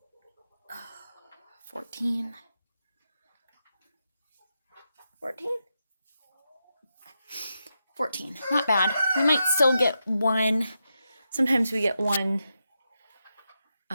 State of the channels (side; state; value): both; inverted; correlation -0.87